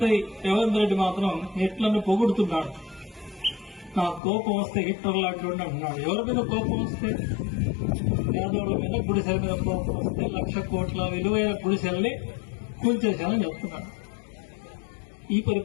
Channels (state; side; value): drops out; right; at 4.2 s